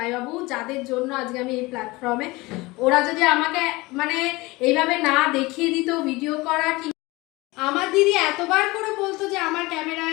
যাদের জন্য আজকে আমি এই প্ল্যাটফর্মে, ওরা যদি আমাকে মানে এইভাবে না দেখিয়ে দিত ভিডিও করা, কি আমার দিদি এতবার করে বলতো যে আমার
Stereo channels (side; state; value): right; quieter; 22.1 dB